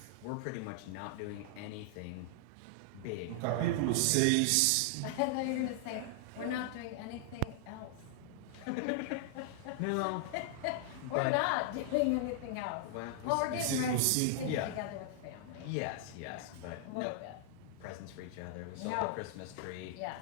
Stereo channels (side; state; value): both; different; correlation -0.01